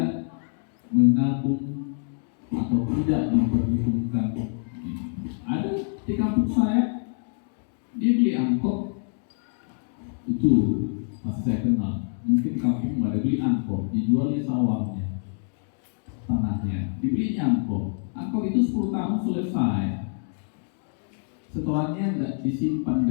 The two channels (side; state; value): right; silent; 61 dB below the other